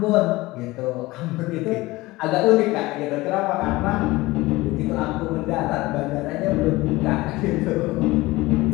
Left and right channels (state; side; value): quieter; right; 20.0 dB